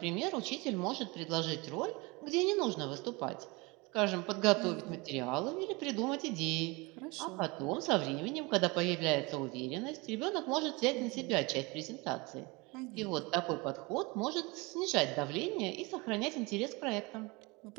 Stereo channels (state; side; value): quieter; left; 25.8 dB